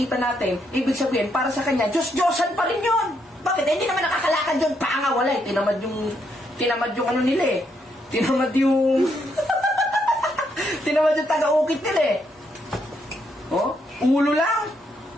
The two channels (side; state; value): both; normal; correlation 0.76